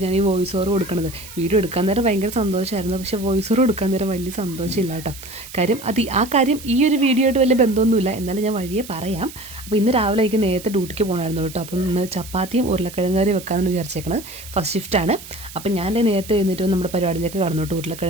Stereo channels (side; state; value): right; noise; hiss, 15 dB below the sound